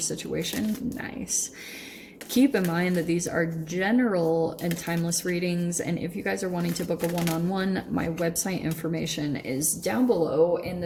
Nice. Keep in mind that these are general and timeless readings, and if you guys are wanting to book a one-on-one, my website information is down below in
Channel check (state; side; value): identical; both; correlation 1.00